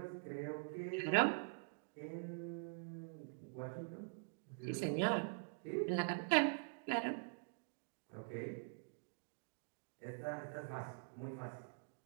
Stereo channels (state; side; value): silent; left; digital silence